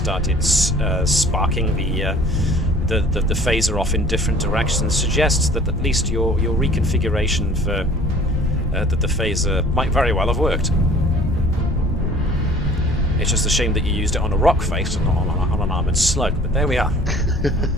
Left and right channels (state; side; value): normal; both; correlation 0.50